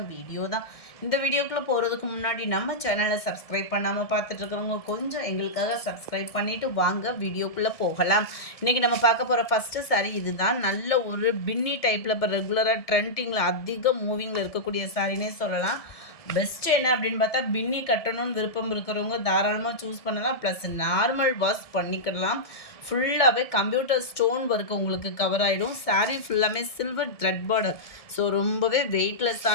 வீடியோ தான். இந்த வீடியோக்குள்ளே போகிறதுக்கு முன்னாடி நம்ம சேனலை சப்ஸ்கிரைப் பண்ணாமல் பார்த்துட்ருக்கிறவங்க கொஞ்சம் எங்களுக்காக சப்ஸ்கிரைப் பண்ணிவிட்டு வாங்க வீடியோக்குள்ளே போகலாம். இன்றைக்கி நம்ம பார்க்க போகிற ஃபஸ்ட்டு சாரீ இது தான். நல்ல ஒரு பின்னி டைப்பில் இப்போ ரெகுலராக ட்ரெண்டிங்கில் அதிக மூவிங்கில் இருக்கக்கூடிய சாரினே சொல்லலாம். பெஸ்ட்டு என்ன அப்படின்னு பார்த்தா, பின்னி கட்டணும்னு விருப்பம் இருக்கிறவங்க தாராளமாக சூஸ் பண்ணலாம். ப்ளஸ் நார்மல் வாஷ் பண்ணிக்கலாம். ஃபுல்லாகவே கம்ப்யூட்டர் ஸ்டோன் ஒர்க் உங்களுக்கு கவர் ஆகிடும். சாரீ ஃபுல்லாமே சில்வர் த்ரெட் பார்டர். ஸோ ரொம்பவே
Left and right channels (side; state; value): right; late; 1.7 ms